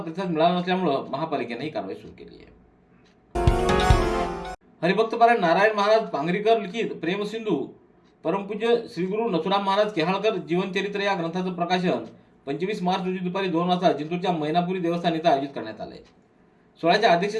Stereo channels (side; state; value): both; identical; correlation 1.00